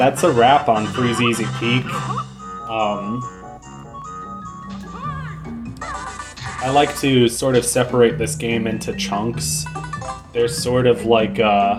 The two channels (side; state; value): both; identical; correlation 1.00